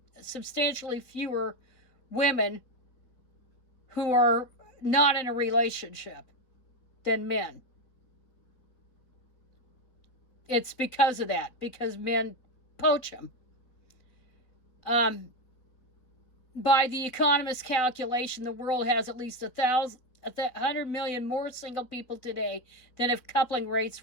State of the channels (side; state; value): right; late; 3.9 ms